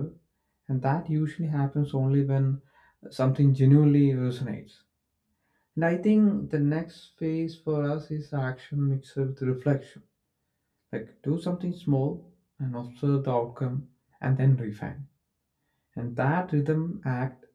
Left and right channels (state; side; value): identical; both; correlation 1.00